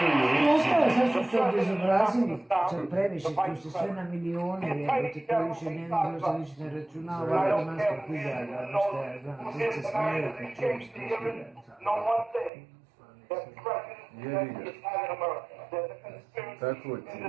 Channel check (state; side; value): drops out; left; at 12.5 s